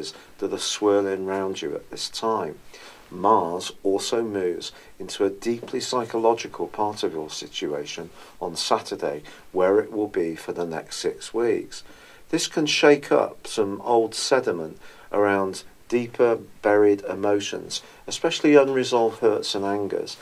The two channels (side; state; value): both; identical; correlation 1.00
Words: that are swirling around you at this time. Mars also moves into a deeply psychological part of your situation on Saturday, where it will be for the next 6 weeks. This can shake up some old sediment around deeper buried emotions, especially unresolved hurts and angers,